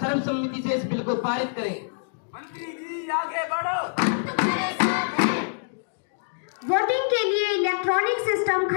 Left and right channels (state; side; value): silent; right; digital silence